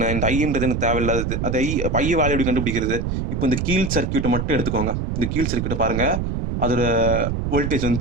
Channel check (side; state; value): right; noise; rumble, 2 dB below the sound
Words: இந்த ஐன்றது எனக்கு தேவையில்லாதது. அது ஐ வேல்யூ எப்படி கண்டுபிடிக்கிறது, இப்போ இந்த கீழ் சர்க்கியூட்டை மட்டும் எடுத்துக்கோங்க. இந்த கீழ் சர்க்கியூட்டை பாருங்க, அதோட வோல்டேஜ்